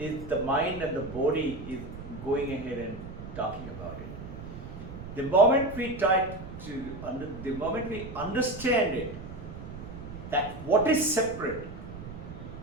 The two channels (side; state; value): right; noise; rumble, 11 dB below the sound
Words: the mind and the body is going ahead and talking about it. The moment we try to, the moment we understand it, that what is separate,